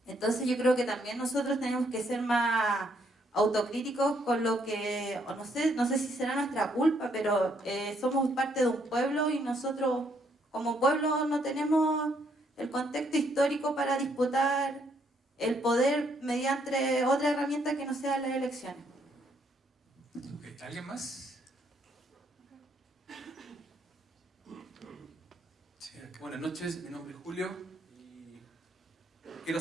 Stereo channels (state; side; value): normal; both; correlation 0.71